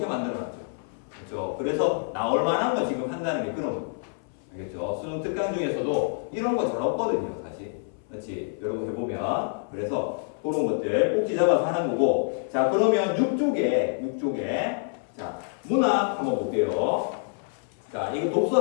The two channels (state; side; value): silent; right; 60 dB below the other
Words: 만들어놨죠. 그렇죠? 그래서 나올 만한 거 지금 한다는 게 그런 거. 알겠죠? 수능 특강 중에서도 이런 거 잘 없거든요, 사실. 그렇지? 여러분 해보면. 그래서 그런 것들 꼭지 잡아서 하는 거고. 자, 그러면 6쪽에. 자, 문학 한번 볼게요. 자, 이거 독서